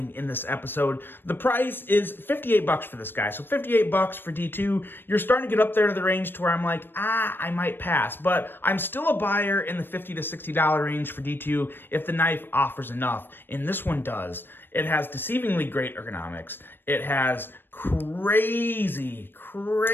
in this episode. The price is $58 for this guy. So $58 for D2. You're starting to get up there to the range to where I'm like, I might pass. But I'm still a buyer in the $50 to $60 range for D2 if the knife offers enough. And this one does. It has deceivingly great ergonomics. It has crazy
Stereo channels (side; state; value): right; late; 0.097 ms